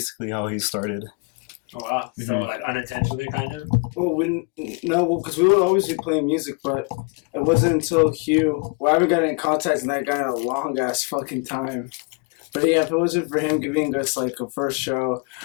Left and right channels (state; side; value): quieter; right; 32.5 dB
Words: how he started. Oh wow! So like unintentionally, kind of. Well, because we would always be playing music, but it wasn't until Hugh. Well, I haven't gotten in contact with that guy in a long ass fucking time. But yeah, if it wasn't for him giving us like a first show,